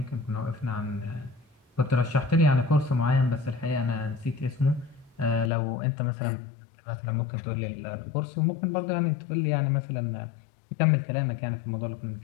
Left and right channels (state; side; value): drops out; right; at 5.5 s